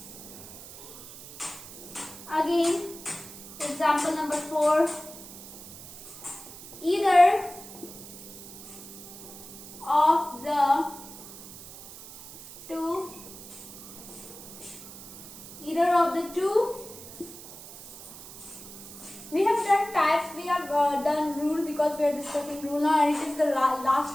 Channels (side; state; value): right; noise; hiss, 15 dB below the sound